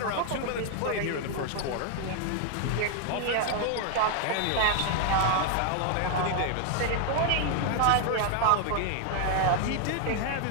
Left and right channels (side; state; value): both; different; correlation 0.00